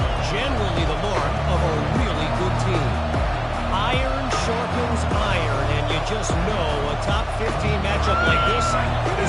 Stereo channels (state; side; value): identical; both; correlation 1.00